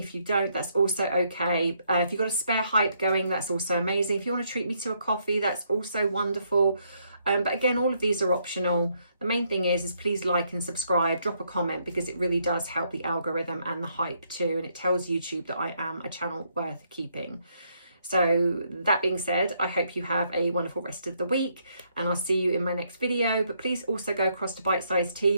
you don't, that's also okay. If you've got a spare hype going, that's also amazing. If you want to treat me to a coffee, that's also wonderful. But again, all of these are optional. The main thing is please like and subscribe, drop a comment, because it really does help the algorithm and the hype too. And it tells YouTube that I am a channel worth keeping. So that being said, I hope you have a wonderful rest of the week, and I'll see you in my next video. But please also go across to Bite Size Tea,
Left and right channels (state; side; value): inverted; both; correlation -0.73